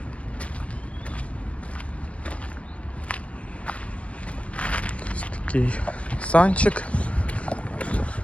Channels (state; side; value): late; right; 0.063 ms